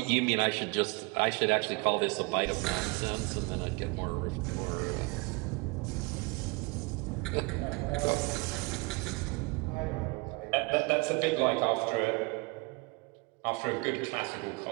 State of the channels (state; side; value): quieter; left; 28.5 dB